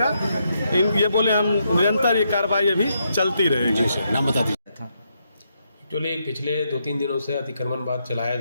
ये बोले हम निरंतर ये कार्रवाई अभी चलती रहेगी। नाम बता दीजिए। एक्चुअली पिछले 2-3 दिनों से अतिक्रमण बाद चलाया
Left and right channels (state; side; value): inverted; both; correlation -0.79